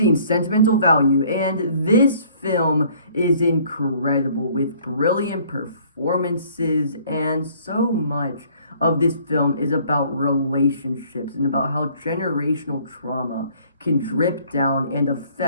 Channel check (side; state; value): both; inverted; correlation -0.58